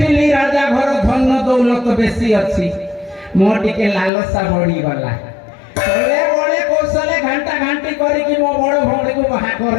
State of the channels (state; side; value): drops out; right; at 4.1 s